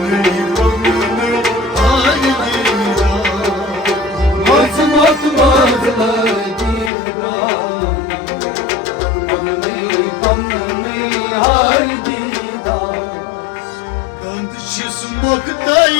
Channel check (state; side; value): drops out; right; at 6.9 s